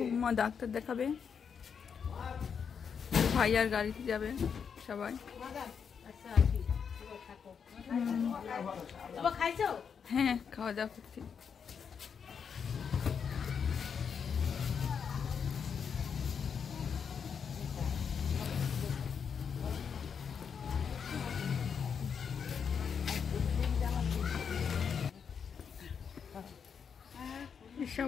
ডাক্তার দেখাবে, ভাই আর গাড়িতে যাবে সবাই। হ্যাঁ, খাওয়া দাওয়া করছি।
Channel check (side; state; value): right; quieter; 6.8 dB